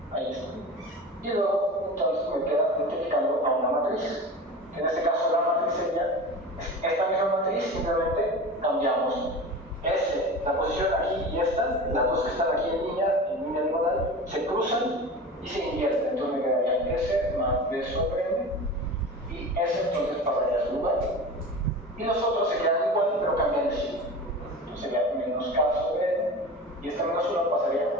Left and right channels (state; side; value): normal; both; correlation 0.32